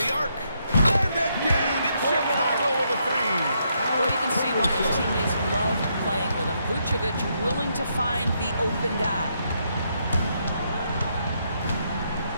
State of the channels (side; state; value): both; inverted; correlation -0.77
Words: arc. And again, it's Chicago with a 3. Well, you can see why his teammates love playing with him. Vucevic willing to find the open guy.